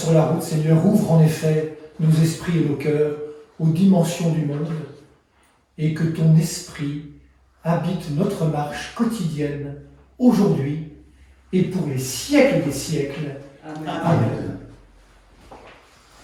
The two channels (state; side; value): identical; both; correlation 1.00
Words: la route, Seigneur, ouvre en effet nos esprits et nos cœurs aux dimensions du monde, et que ton esprit habite notre marche quotidienne, aujourd'hui et pour les siècles des siècles. Amen. Amen.